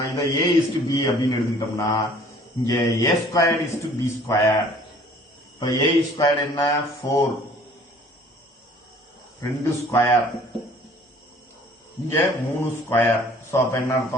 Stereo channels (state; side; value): normal; both; correlation 0.53